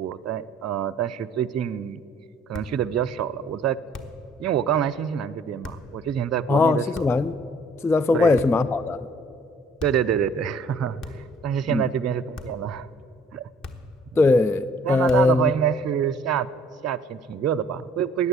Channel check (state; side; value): normal; both; correlation 0.58